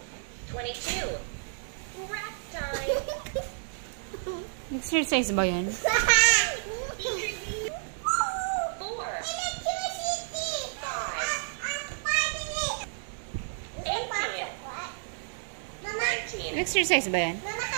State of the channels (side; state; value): left; silent; digital silence